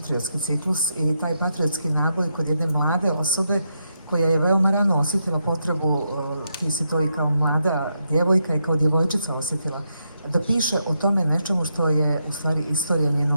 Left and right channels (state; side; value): inverted; both; correlation -0.83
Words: ciklus i taj patriotski naboj kod jedne mlade osobe koja je veoma rano osjetila potrebu, ti si to i kao mlada djevojka i kao djevojčica osjetila, da piše o tome nečemu što je u stvari istorija